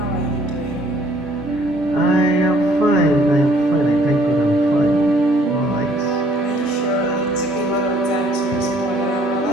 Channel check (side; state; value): both; normal; correlation 0.61